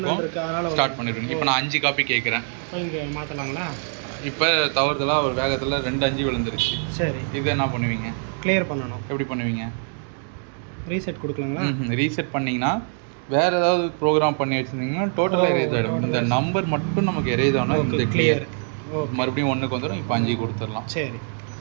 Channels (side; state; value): left; silent; 56 dB below the other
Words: ஸ்டார்ட் பண்ணிடுவீங்க. இப்போ நான் 5 காப்பி கேட்குறேன். மாற்றலாங்களா? இப்போ தவறுதலாக ஒரு வேகத்தில் 2 5 விழுந்துருச்சு. சரி, இது என்ன பண்ணுவீங்க? கிளியர் பண்ணணும். எப்படி பண்ணுவீங்க? ரீசெட் கொடுக்கலாங்களா? ரீசெட் பண்ணிங்கன்னா வேறு ஏதாவது ப்ரோக்ராம் பண்ணி வச்சுருந்தீங்கன்னா டோட்டலாக எரேஸ் ஆகிடும். இந்த நம்பர் மட்டும் நமக்கு எரேஸ் ஆனால் இந்த கிளியர் மறுபடியும் 1க்கு வந்துடும். இப்போ 5 கொடுத்துடலாம். சரி,